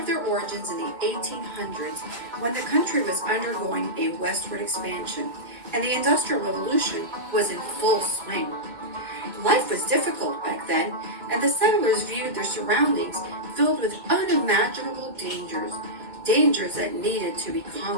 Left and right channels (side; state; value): left; late; 2.2 ms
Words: their origins in the 1800s when the country was undergoing a westward expansion and the Industrial Revolution was in full swing. Life was difficult back then, and the settlers viewed their surroundings filled with unimaginable dangers that needed to be